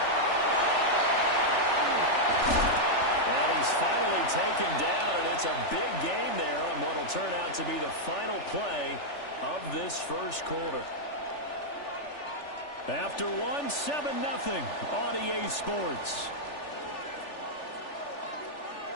And he's finally taken down, and it's a big gain there on what will turn out to be the final play of this first quarter. After one, 7-0 on EA Sports.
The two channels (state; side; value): late; right; 3.4 ms